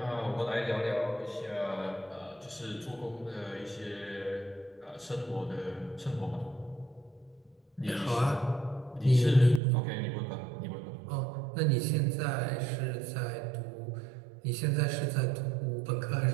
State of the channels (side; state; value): left; drops out; at 9.6 s